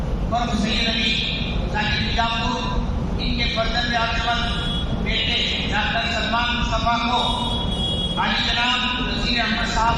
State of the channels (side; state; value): both; identical; correlation 1.00